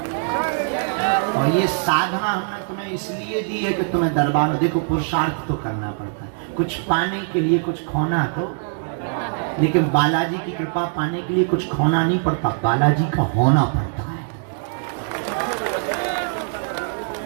और ये साधना हमने तुम्हें इसलिए दी है कि तुम्हें दरबार, देखो पुरुषार्थ तो करना पड़ता है, कुछ पाने के लिए कुछ खोना तो, लेकिन बालाजी की कृपा पाने के लिए कुछ खोना नहीं पड़ता, बालाजी का होना पड़ता है।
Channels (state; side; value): silent; left; digital silence